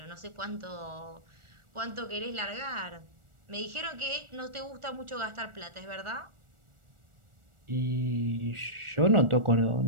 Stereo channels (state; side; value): late; left; 1.4 ms